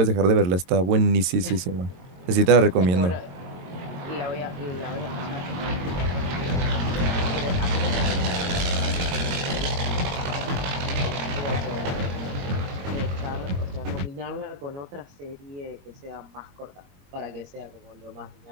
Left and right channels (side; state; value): left; late; 22 ms